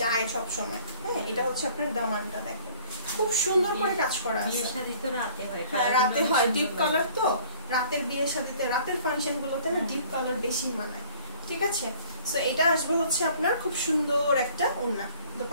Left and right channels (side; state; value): both; inverted; correlation -0.53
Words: সব সময়। হ্যাঁ, এটা হচ্ছে আপনার দামানটা দেখেন, খুব সুন্দর করে কাজ করা আছে। বিয়ের শাদী তো রাতে হয়। হ্যাঁ, রাতে হয়, ডিপ কালার তো, রাতের বিয়ে শাদীতে, রাতের ফাংশন গুলোতে না ডিপ কালার বেশি মানায়। ঠিক আছে, সো এটা আসবে হচ্ছে আপনার খুব সুন্দর একটা ওড়না।